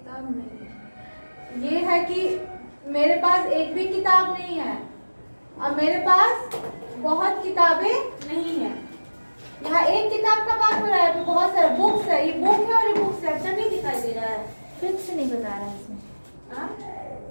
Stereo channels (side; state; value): both; inverted; correlation -1.00